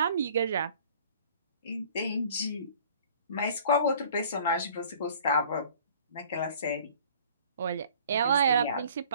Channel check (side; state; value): both; inverted; correlation -0.51